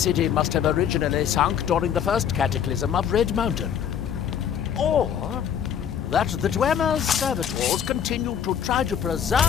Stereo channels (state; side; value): quieter; right; 8.7 dB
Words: must have originally sunk during the first cataclysm of Red Mountain. Or that the Dwemer's servitors continued to try to